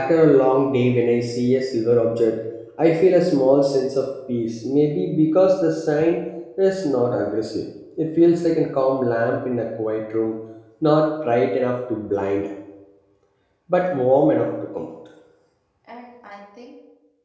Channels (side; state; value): both; identical; correlation 1.00